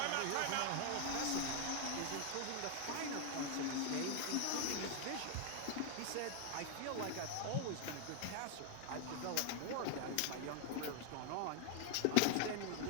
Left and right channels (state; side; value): different; both; correlation 0.00